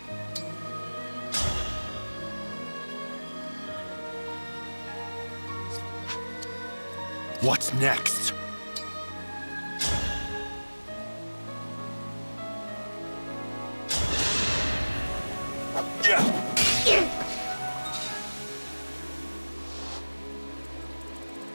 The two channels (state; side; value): inverted; both; correlation -1.00